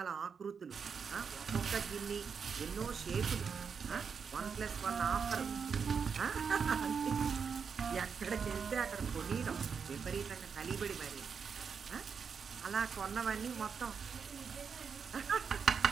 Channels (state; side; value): quieter; left; 6.2 dB